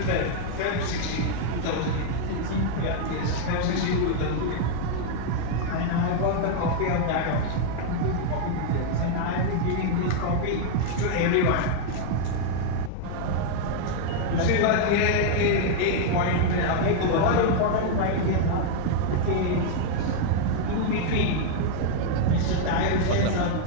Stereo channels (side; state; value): both; different; correlation 0.00